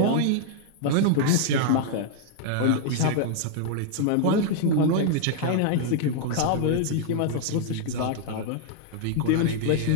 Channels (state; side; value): different; both; correlation -0.01